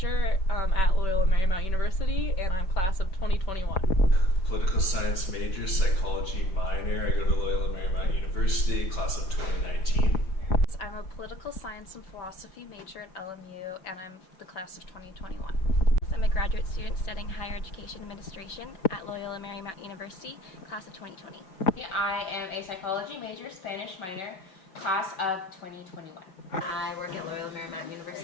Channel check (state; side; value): late; right; 5.4 ms